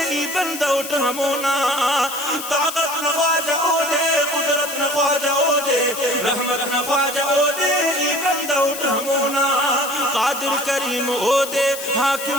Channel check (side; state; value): left; noise; hiss, 9 dB below the sound